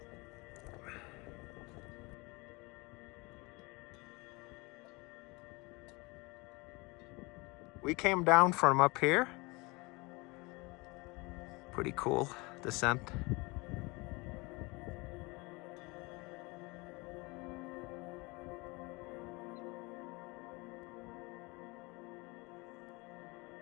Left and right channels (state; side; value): quieter; right; 25.7 dB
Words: We came down from up here. Pretty cool descent.